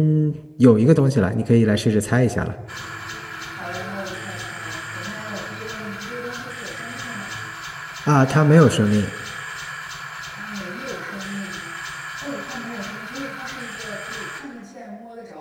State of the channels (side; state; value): both; identical; correlation 1.00